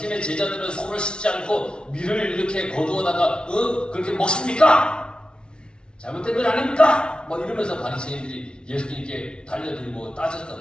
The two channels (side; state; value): right; late; 0.056 ms